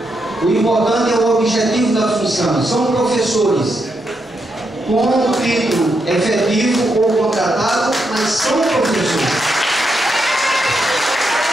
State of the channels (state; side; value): normal; both; correlation 0.82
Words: O importante é o objetivo da função. São professores com título efetivo ou contratado, mas são professores.